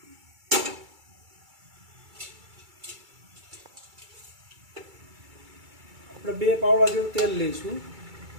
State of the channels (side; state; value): left; late; 2.3 ms